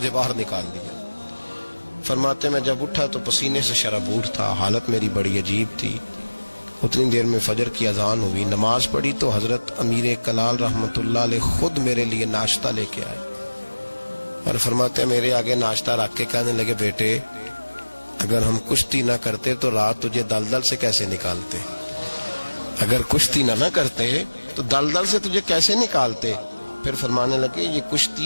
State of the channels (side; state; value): both; inverted; correlation -1.00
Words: باہر نکال دیا۔ فرماتے میں جب اٹھا تو پسینے سے شرابور تھا، حالت میری بڑی عجیب تھی۔ اتنی دیر میں فجر کی اذان ہوئی، نماز پڑھی تو حضرت امیر کلال رحمت اللہ علیہ خود میرے لیے ناشتہ لے کے آئے اور فرماتے میرے آگے ناشتہ رکھ کے کہنے لگے بیٹے اگر ہم کشتی نہ کرتے تو رات تجھے دلدل سے کیسے نکالتے، اگر کشتی نہ کرتے تو دلدل سے تجھے کیسے نکالتے۔ پھر فرمانے لگے یہ